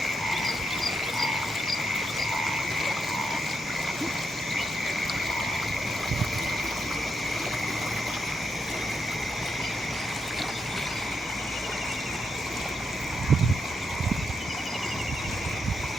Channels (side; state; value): both; normal; correlation 0.82